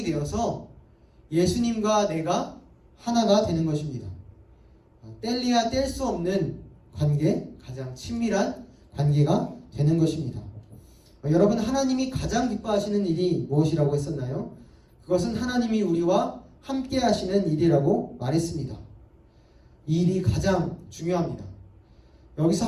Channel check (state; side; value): identical; both; correlation 1.00